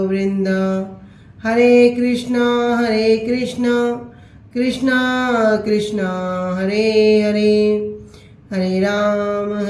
वृंद। हरे कृष्णा कृष्णा कृष्णा हरे हरे हरे राम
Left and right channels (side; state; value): both; identical; correlation 1.00